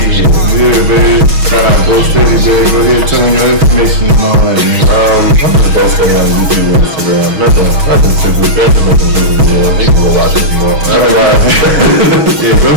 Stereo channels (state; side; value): late; left; 6.3 ms